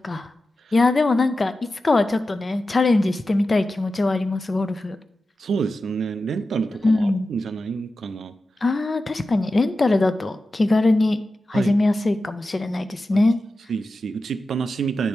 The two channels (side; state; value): both; normal; correlation 0.93